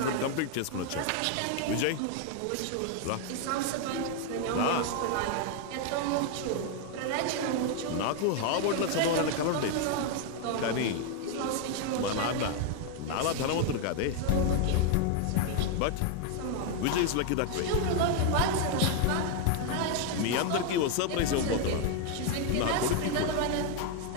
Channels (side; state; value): both; different; correlation 0.00